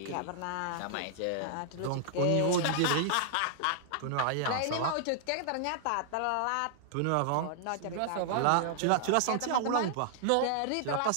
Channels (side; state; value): both; different; correlation -0.01